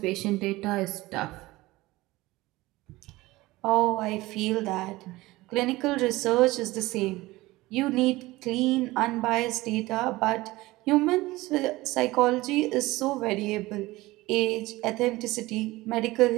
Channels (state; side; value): quieter; left; 19.4 dB